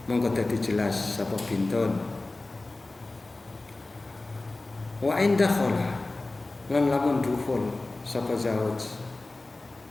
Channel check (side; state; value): right; quieter; 3.1 dB